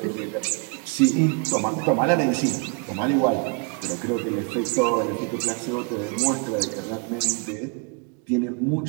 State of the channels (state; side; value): quieter; left; 35.6 dB